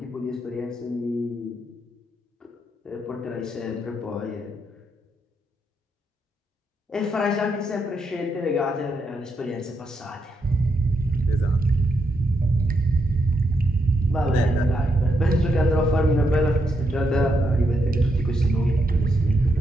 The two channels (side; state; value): both; normal; correlation 0.80